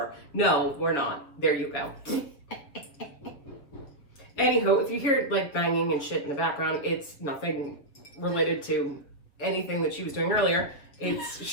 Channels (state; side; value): late; right; 7.1 ms